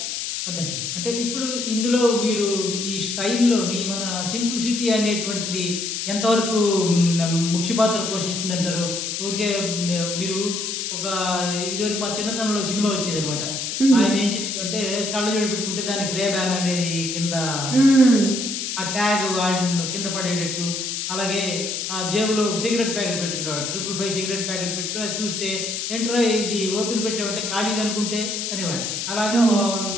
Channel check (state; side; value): noise; left; hiss, 3 dB below the sound